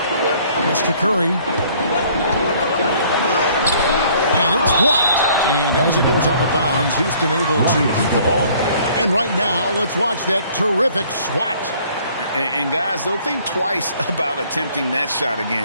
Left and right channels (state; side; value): inverted; both; correlation -0.58